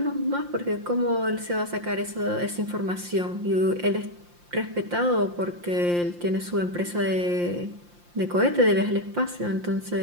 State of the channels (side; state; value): left; late; 5.7 ms